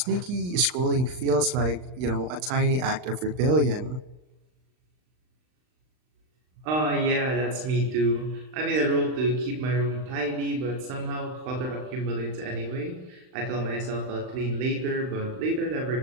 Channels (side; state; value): left; late; 39 ms